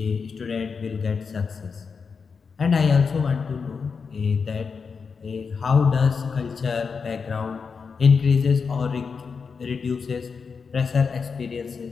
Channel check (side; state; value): right; quieter; 5.5 dB